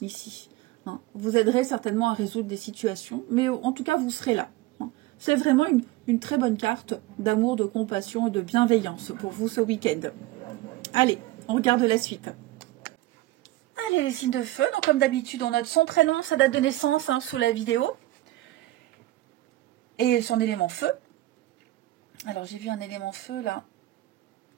Hein. Vous aiderez certainement à résoudre des situations, mais en tout cas vous serez là. Hein. C'est vraiment une très bonne carte d'amour, de compassion et de bienveillance pour vous ce week-end. Allez, on regarde la suite. Allez, les signes de feu, donc comme d'habitude on note son prénom, sa date de naissance hein, sous la vidéo. Et son élément feu. Alors, j'ai vu un élément feu, là.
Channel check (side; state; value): left; quieter; 17.0 dB